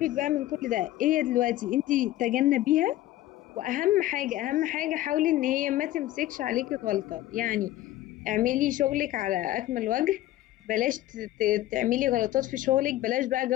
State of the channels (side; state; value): right; quieter; 15.0 dB